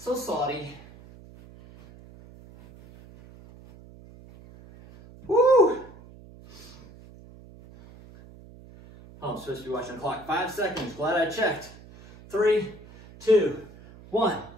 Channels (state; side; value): noise; right; hum, 21 dB below the sound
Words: salty. Woo! Oh, I'm supposed to be watching the clock. 5 seconds. Glad I checked. 3, 2, 1.